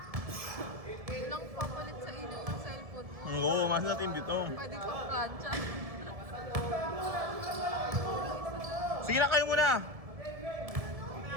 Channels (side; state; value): left; late; 1.7 ms